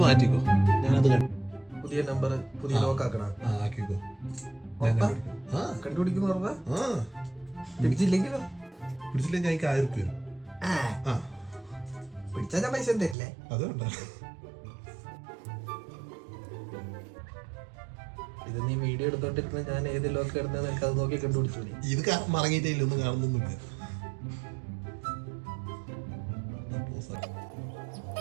മാറ്റിക്കോ. ഞാനത് പുതിയ നമ്പർ പുതിയ ലോക്ക് ആക്കണം. ആക്കിക്കോ. കണ്ടുപിടിക്കുന്ന പറഞ്ഞാ പിടിച്ചില്ലെങ്കിലോ? പിടിച്ചില്ലെങ്കിൽ എനിക്ക് 1000 രൂപ. പിടിച്ചാ ഞാൻ പൈസ തരില്ലേ? അതുകൊണ്ടാ ഇത് നീ വീഡിയോ എടുത്തോണ്ടിരുന്ന ഞാൻ ഏത് ലോക്ക് ഇടുന്നത് എനിക്ക് അത് നോക്കി കണ്ടുപിടിച്ചു. ഇത് മറങ്ങിയിട്ടില്ല, ഒന്നും കാണുന്നൊന്നുമില്ല.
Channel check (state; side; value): drops out; left; at 13.2 s